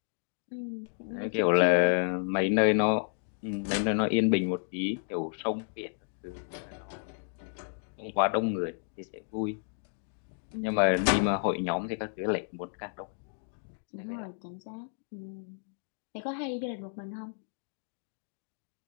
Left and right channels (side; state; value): right; silent; digital silence